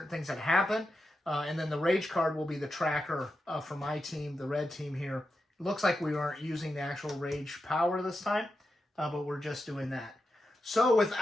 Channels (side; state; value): both; normal; correlation 0.89